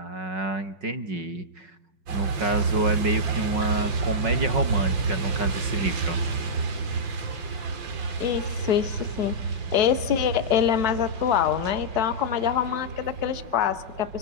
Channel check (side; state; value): left; late; 5.8 ms